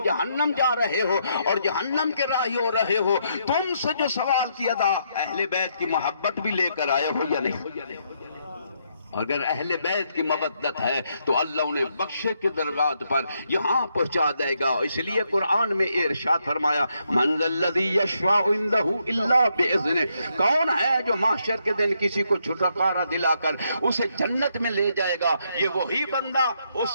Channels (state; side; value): inverted; both; correlation -0.76